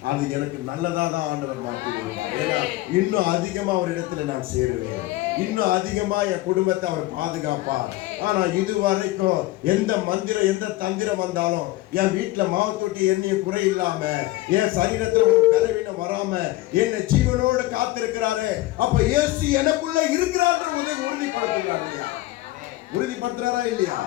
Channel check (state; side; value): quieter; right; 17.9 dB